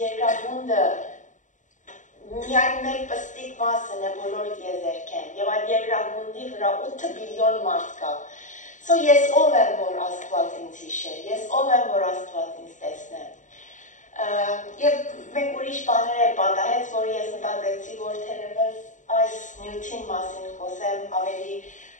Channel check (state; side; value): late; right; 0.36 ms